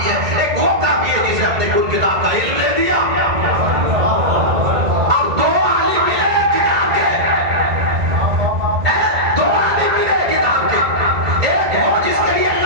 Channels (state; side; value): late; left; 1.9 ms